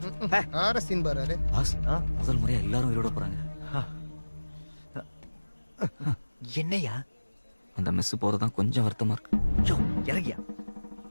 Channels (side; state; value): both; inverted; correlation -1.00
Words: சீன் பாரு. பாஸ், முதல் முறையா எல்லாரும் உயிரோட போறாங்க. என்னையா? அந்த மெஸ் போறதுதான் கொஞ்சம் வருத்தமா இருக்கு. யோ, இறங்கியா,